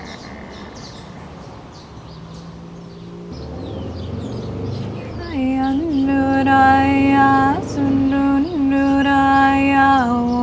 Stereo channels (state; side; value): identical; both; correlation 1.00